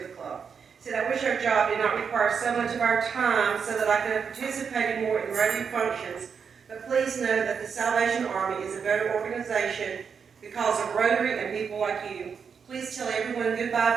the club. He said, "I wish our job did not require so much of our time so that I could have participated more in radio functions, but please know that the Salvation Army is a better organization because of Rotary and people like you. Please tell everyone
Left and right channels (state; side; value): quieter; left; 6.4 dB